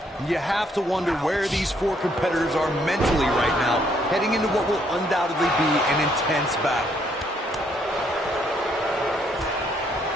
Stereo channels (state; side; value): normal; both; correlation 0.70